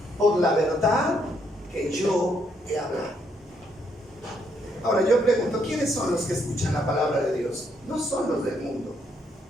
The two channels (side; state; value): both; normal; correlation 0.73